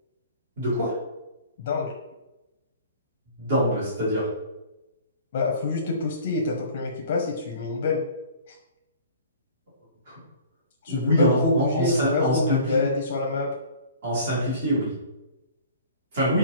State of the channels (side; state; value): both; inverted; correlation -0.46